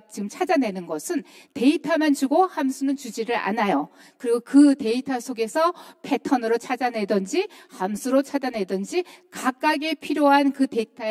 지금 찾아내는 것은 데이터만 주고 함수는 주지를 않아요. 그리고 그 데이터 속에서 패턴으로 찾아내든지 함수로 찾아내든지 각각의 필요한 그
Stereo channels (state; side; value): identical; both; correlation 1.00